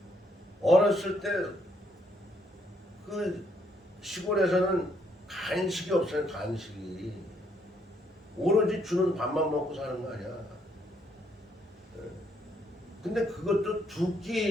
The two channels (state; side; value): normal; both; correlation 0.71